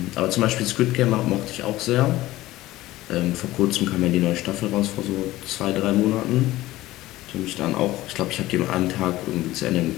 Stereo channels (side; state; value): right; quieter; 17.0 dB